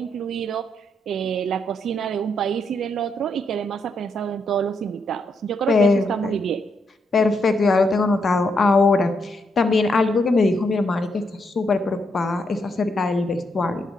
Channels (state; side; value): normal; both; correlation 0.78